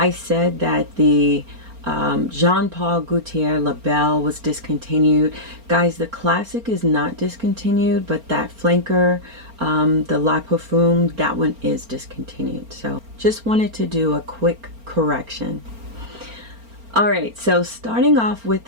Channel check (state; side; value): late; left; 4.4 ms